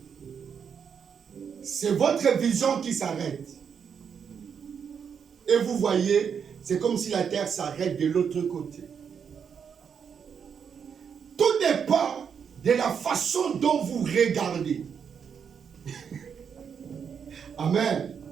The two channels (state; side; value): quieter; left; 7.1 dB